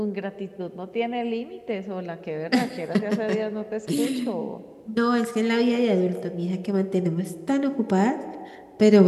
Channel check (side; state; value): both; identical; correlation 1.00